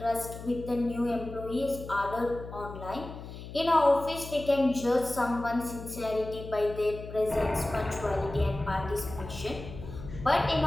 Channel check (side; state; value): left; noise; hum, 12 dB below the sound